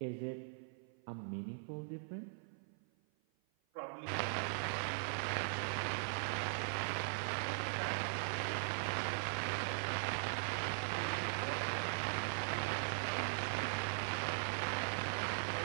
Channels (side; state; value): left; silent; 51 dB below the other